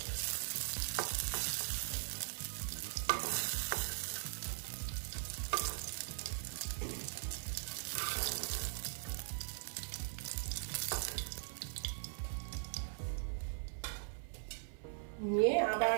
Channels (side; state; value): left; silent; 51 dB below the other